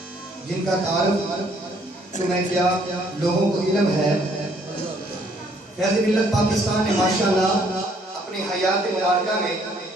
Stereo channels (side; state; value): both; normal; correlation 0.64